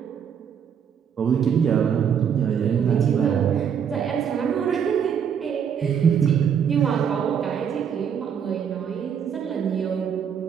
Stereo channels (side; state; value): left; quieter; 7.8 dB